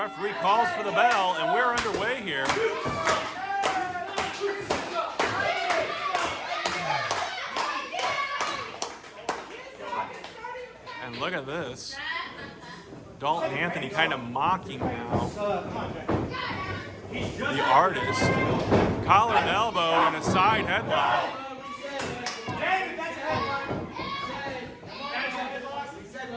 calls for the bell, and we're underway here. And look at this. Dalton Anthony kind of mocking now the artist. Collar and elbow and a side headlock.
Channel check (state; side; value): identical; both; correlation 1.00